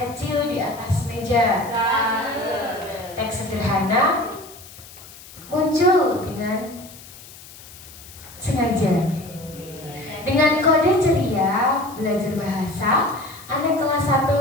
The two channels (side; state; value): left; noise; hiss, 18 dB below the sound